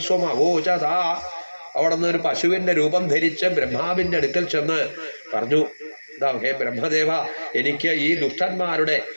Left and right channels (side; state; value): both; inverted; correlation -1.00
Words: സ്വമവോചത. അവിടെ നിന്ന് ഒരു പശുവിന്റെ രൂപം ധരിച്ച് ബ്രഹ്മാവിന്റെ അടുക്കൽ ചെന്ന് പറഞ്ഞു, ഹേ ബ്രഹ്മദേവ, എനിക്ക് ഈ ദുഷ്ടന്മാരുടെ,